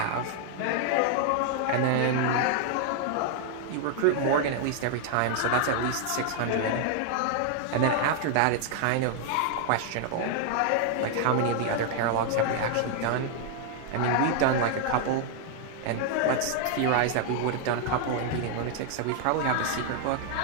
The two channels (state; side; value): different; both; correlation 0.00